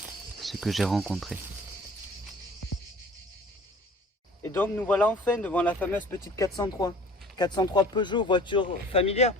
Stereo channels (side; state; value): both; normal; correlation 0.47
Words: ce que j'ai rencontré. Et donc nous voilà enfin devant la fameuse petite 403. 403 Peugeot, voiture familière